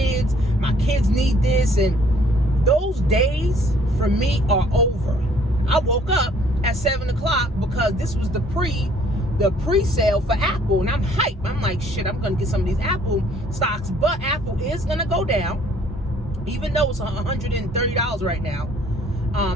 need this, and those days for me are over. I woke up at 7 o'clock because this was the pre-sale for Apple, and I'm hyped. I'm like, shit, I'm gonna get some of these Apple stocks, but Apple is gonna go down, even though it's $130 right now.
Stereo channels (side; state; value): both; normal; correlation 0.60